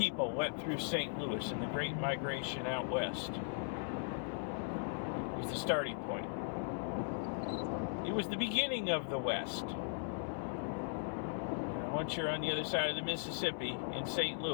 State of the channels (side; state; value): right; silent; 52 dB below the other